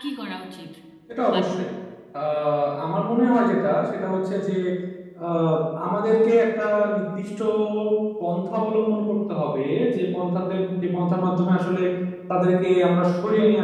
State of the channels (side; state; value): both; identical; correlation 1.00